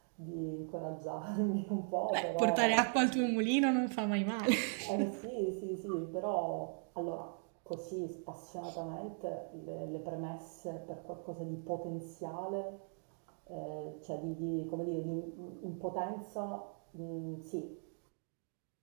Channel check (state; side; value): silent; left; 52 dB below the other